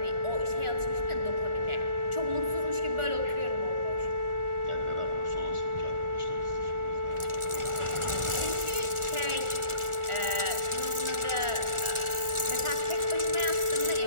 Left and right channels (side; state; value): left; late; 1.4 ms